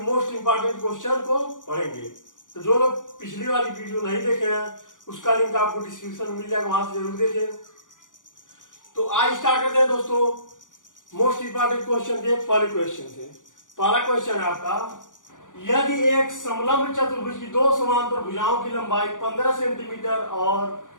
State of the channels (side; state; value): right; late; 0.88 ms